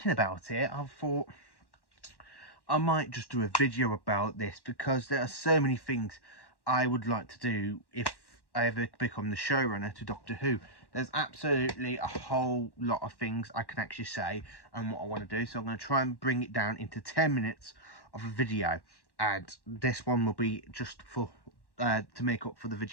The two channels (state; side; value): late; right; 1.1 ms